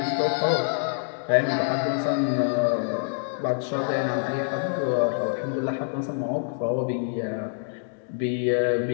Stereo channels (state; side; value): silent; right; digital silence